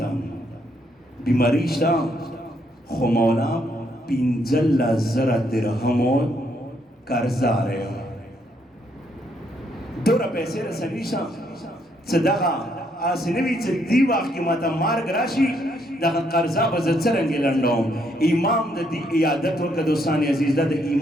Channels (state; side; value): normal; both; correlation 0.73